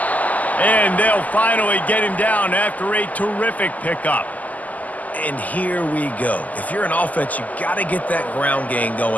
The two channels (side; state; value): right; late; 0.078 ms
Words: And they'll finally get him down after a terrific pickup. And here we go. If you're an offense, you got to get that ground game